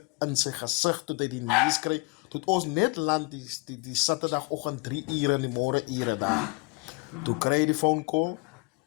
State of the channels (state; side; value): quieter; right; 27.6 dB